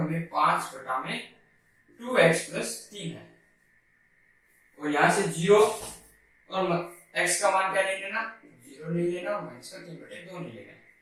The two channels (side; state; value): both; identical; correlation 1.00